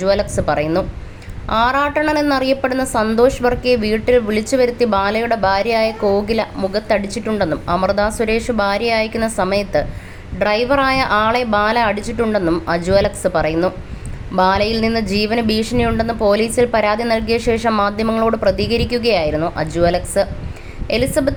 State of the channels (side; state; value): both; identical; correlation 1.00